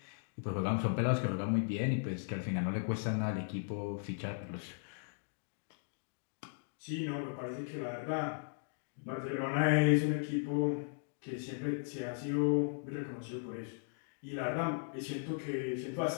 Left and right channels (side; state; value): right; silent; digital silence